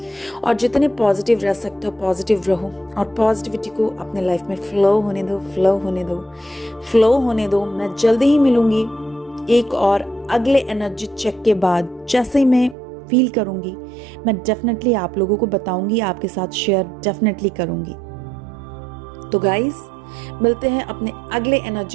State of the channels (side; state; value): left; drops out; at 12.8 s